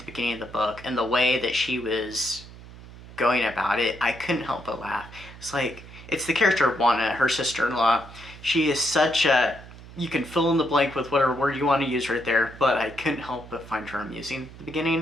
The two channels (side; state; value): right; noise; hum, 17 dB below the sound